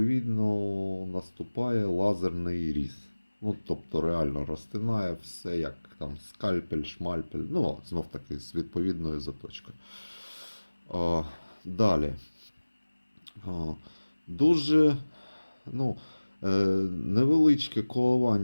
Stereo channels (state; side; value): inverted; both; correlation -1.00